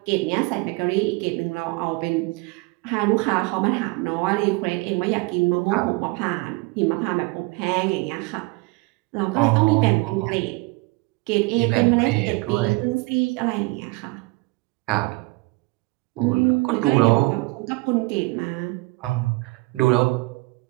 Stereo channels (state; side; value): quieter; left; 24.2 dB